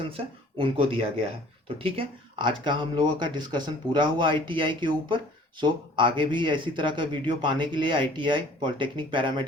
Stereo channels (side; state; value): both; normal; correlation 0.52